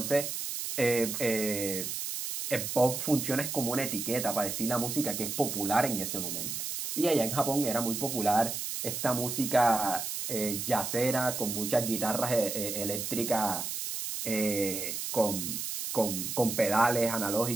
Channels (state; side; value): noise; right; hiss, 4 dB below the sound